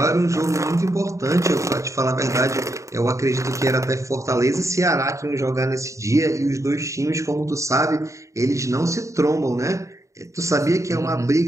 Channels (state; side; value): late; left; 0.15 ms